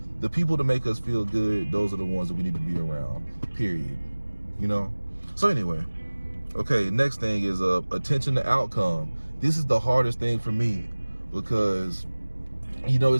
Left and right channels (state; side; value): inverted; both; correlation -1.00